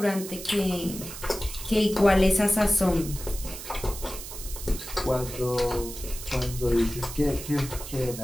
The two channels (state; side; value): noise; right; hiss, 11 dB below the sound